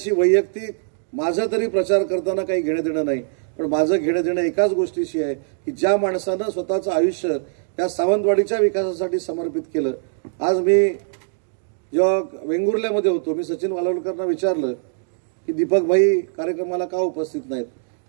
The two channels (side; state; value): left; silent; digital silence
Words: वैयक्तिक माझं तरी प्रचार करताना काही घेणं देणं नाही, पण माझं घेणं देणं एकाच गोष्टीशी आहे की ज्या माणसानं स्वतःचं आयुष्य या सावंतवाडीच्या विकासासाठी समर्पित केलं। आज मी जेव्हा वेंगुर्ल्यामध्ये होतो मी सचिन वालवलकरांना विचारलं की दीपकभाई कार्यक्रमाला का उपस्थित नाहीत,